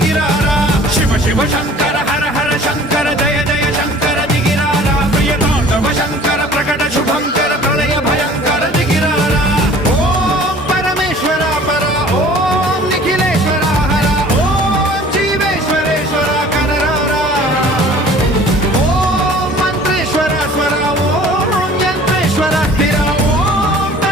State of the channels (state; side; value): normal; both; correlation 0.49